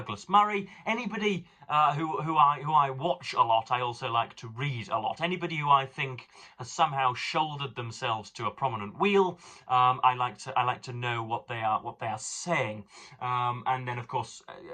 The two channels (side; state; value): both; identical; correlation 1.00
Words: Murray. Anybody who I watch a lot, I also like to read a lot. Anybody who I think has somehow shouldered themselves to a prominent wheel, I like to know what they are saying. And then of course